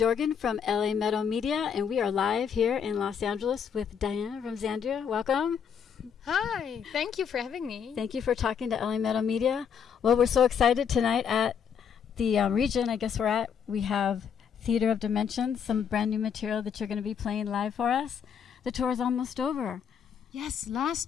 from LA Metal Media, and we are live here in Los Angeles with Dianne from Xandria. Welcome. Hi, thank you for having me. Thank you for talking to LA Metal Media. Well, we're so excited tonight at the region I guess we're at. We have Theater of Dimensions, some brand new material that you're going to be playing live for us. The tour is almost over. Yes,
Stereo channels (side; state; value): right; quieter; 7.5 dB